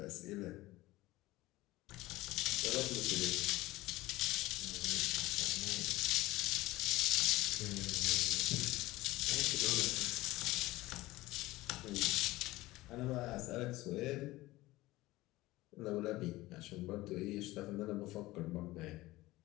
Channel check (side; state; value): right; quieter; 18.5 dB